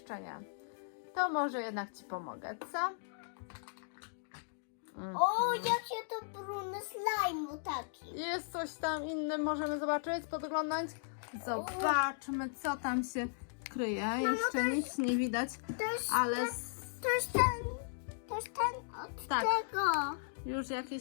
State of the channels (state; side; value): silent; right; digital silence